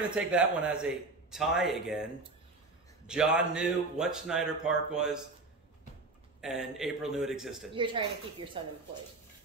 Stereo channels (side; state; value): left; quieter; 3.4 dB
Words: to take that one as a tie again. John knew what Schneider Park was, and April knew it existed. You're trying to keep your son employed.